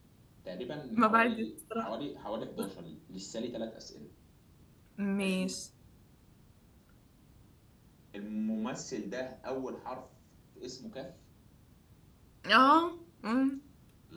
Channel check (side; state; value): both; identical; correlation 1.00